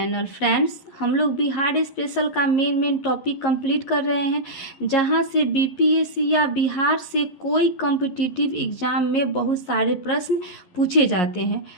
Friends, हम लोग Bihar special का main topic complete कर रहे हैं, जहां से बीपीएससी या बिहार से कोई कॉम्पिटिटिव एग्जाम में बहुत सारे प्रश्न पूछे जाते हैं।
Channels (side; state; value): right; late; 11 ms